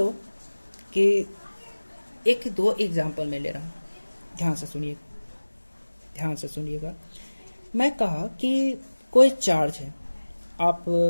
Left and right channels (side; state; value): both; inverted; correlation -1.00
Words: कि एक दो एग्जाम्पल मैं ले रहा हूँ, ध्यान से सुनिए, ध्यान से सुनिएगा। मैं कहा कि कोई चार्ज है, आप